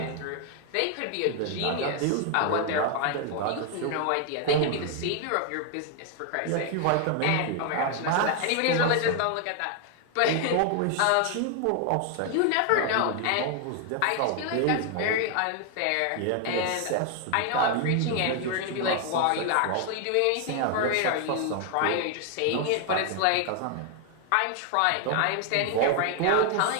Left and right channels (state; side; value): different; both; correlation 0.00